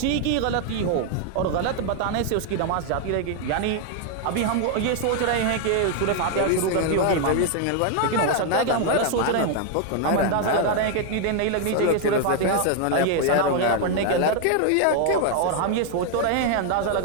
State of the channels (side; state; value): both; different; correlation 0.00